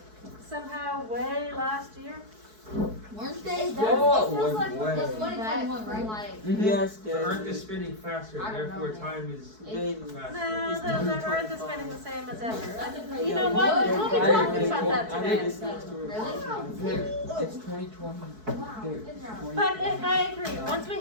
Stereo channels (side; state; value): left; late; 4.6 ms